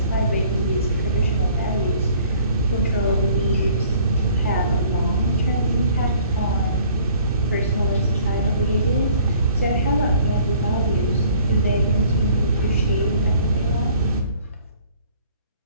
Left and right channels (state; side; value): inverted; both; correlation -0.56